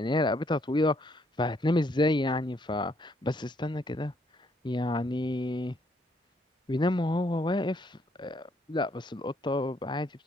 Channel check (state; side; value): normal; both; correlation 0.70